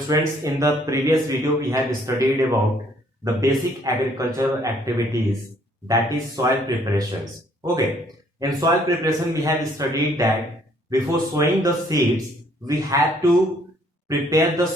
in the previous video we have studied about the basic agricultural activities, that is soil preparations. Okay, in soil preparation we have studied that before sowing the seeds we have to prepare the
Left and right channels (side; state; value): both; normal; correlation 0.64